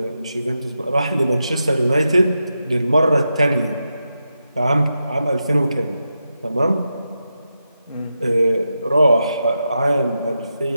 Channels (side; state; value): both; inverted; correlation -0.88